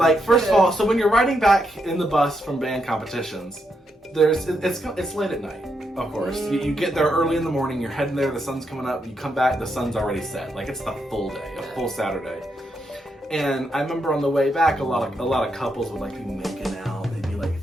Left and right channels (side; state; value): both; normal; correlation 0.81